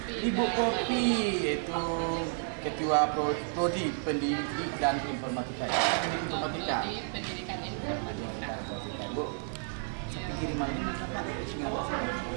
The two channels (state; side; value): silent; left; 57 dB below the other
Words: Kopi yaitu ketua prodi pendidik dan informatika. Pendidikan informatika. Bu, sampai kiriman ini